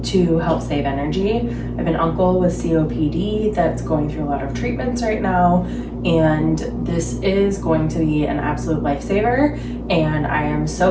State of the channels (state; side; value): identical; both; correlation 1.00